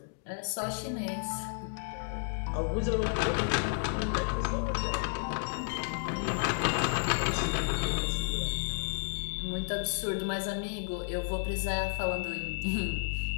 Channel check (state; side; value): silent; right; digital silence